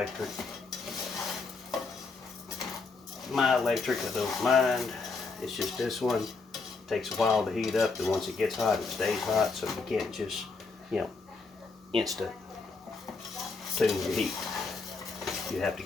My electric, I don't mind. It's just this one takes a while to heat up, and once it gets hot, it stays hot, so you can't just, instant tune your heat. You have to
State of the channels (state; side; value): quieter; right; 4.1 dB